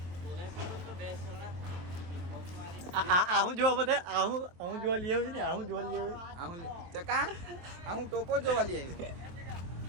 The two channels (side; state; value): left; late; 23 ms